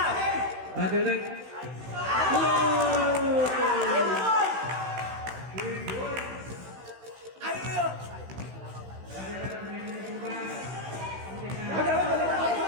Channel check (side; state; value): left; late; 16 ms